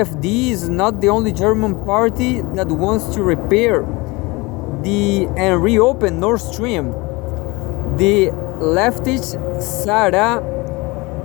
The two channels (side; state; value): right; quieter; 24.3 dB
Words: is not the only German party that wants to repair and reopen Nord Stream. The leftist Sarah